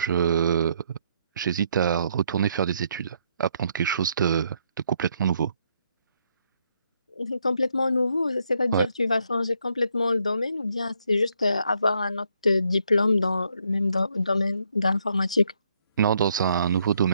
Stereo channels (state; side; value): inverted; both; correlation -0.73